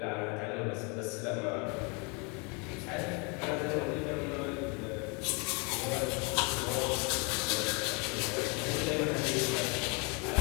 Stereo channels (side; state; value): right; quieter; 32.2 dB